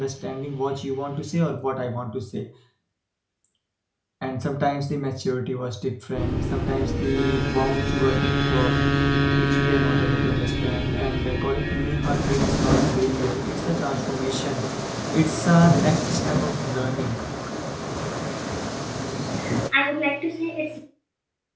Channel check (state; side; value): identical; both; correlation 1.00